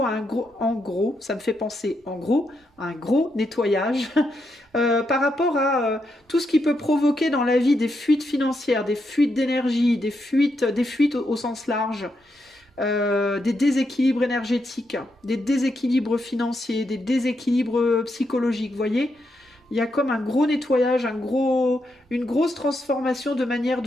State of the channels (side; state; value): both; normal; correlation 0.82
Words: à un gros nettoyage par rapport à tout ce qui peut provoquer dans la vie des fuites financières, des fuites d'énergie, des fuites au sens large. Des déséquilibres énergétiques, des déséquilibres financiers, des déséquilibres psychologiques, vous voyez, il y a comme un gros nettoyage, une grosse transformation de manière